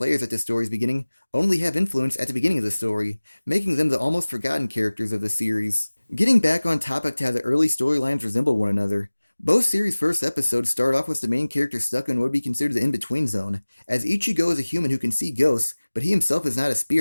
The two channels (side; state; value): both; inverted; correlation -1.00